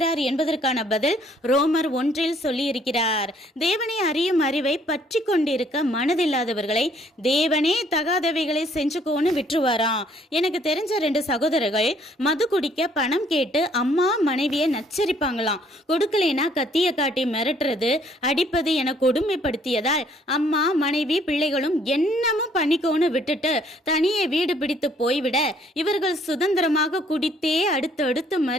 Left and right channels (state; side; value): normal; both; correlation 0.63